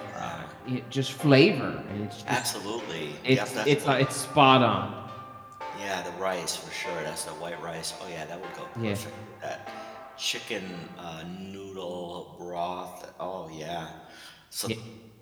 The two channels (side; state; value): both; identical; correlation 1.00